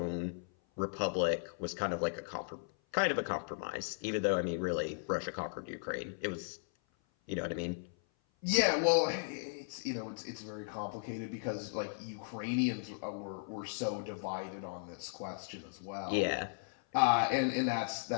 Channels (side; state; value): right; silent; 54 dB below the other